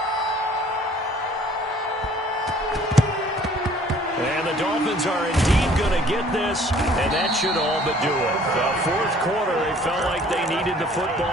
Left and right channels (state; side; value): normal; both; correlation 0.55